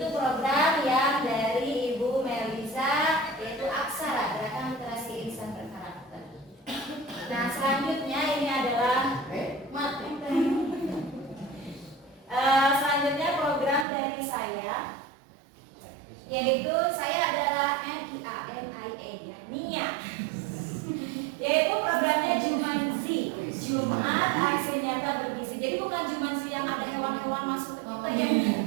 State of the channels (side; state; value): left; drops out; at 13.9 s